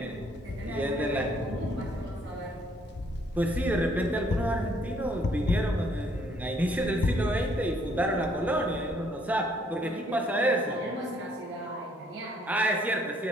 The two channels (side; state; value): both; normal; correlation 0.66